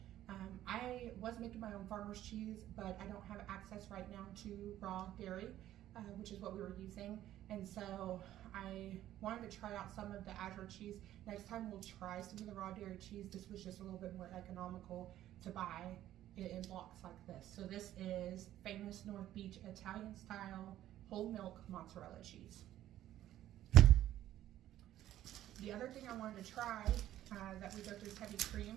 I was making my own farmer's cheese, but I don't have access right now to raw dairy, which is what we were using. And so I wanted to try out some of the Azure cheese. Next time we'll try some of the raw dairy cheese. This was just a little bit more economical to buy it in blocks like this. So this is Famous North Beach Italian style whole milk mozzarella cheese. The other thing I wanted to try that we go through is heavy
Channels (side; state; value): left; quieter; 12.9 dB